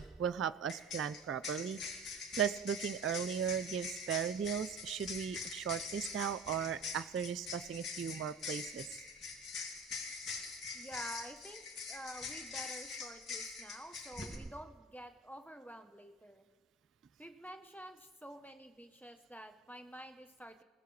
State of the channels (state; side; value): quieter; left; 4.1 dB